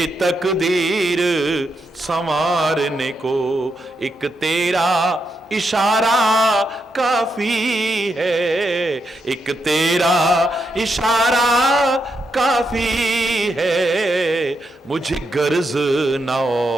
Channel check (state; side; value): normal; both; correlation 0.82